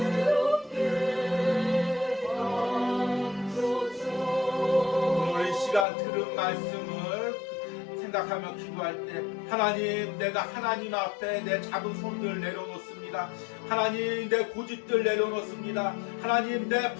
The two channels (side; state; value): right; drops out; at 5.9 s